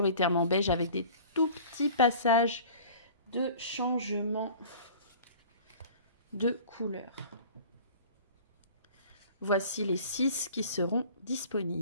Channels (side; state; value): both; inverted; correlation -0.44